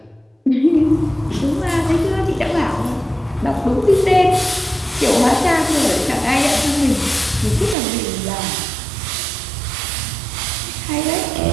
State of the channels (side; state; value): left; drops out; at 7.8 s